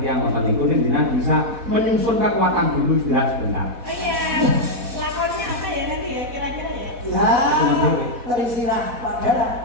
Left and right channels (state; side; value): late; left; 4.1 ms